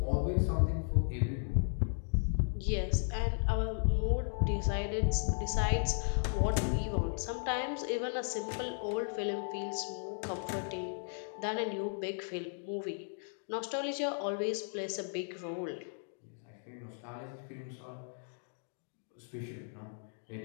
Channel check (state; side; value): silent; right; digital silence